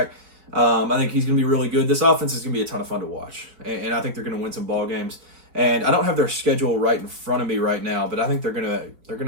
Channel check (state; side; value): late; left; 4.7 ms